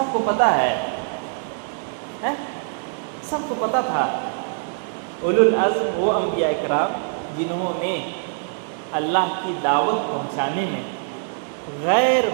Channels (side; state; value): left; silent; 63 dB below the other